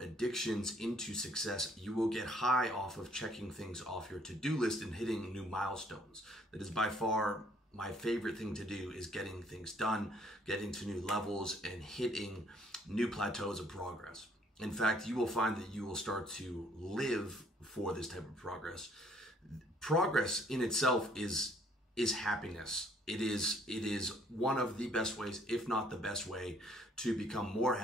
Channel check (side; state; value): both; normal; correlation 0.63